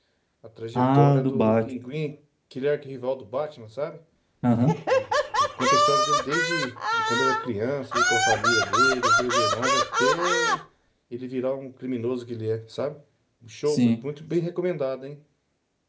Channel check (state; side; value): identical; both; correlation 1.00